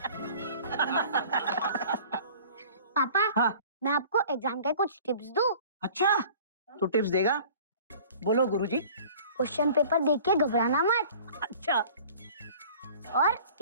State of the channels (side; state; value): both; inverted; correlation -0.47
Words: पापा, हाँ? मैं आपको एग्जाम के कुछ टिप्स दूं? अच्छा, तू टिप्स देगा? बोलो गुरुजी। क्वेश्चन पेपर देख के घबराना मत। अच्छा और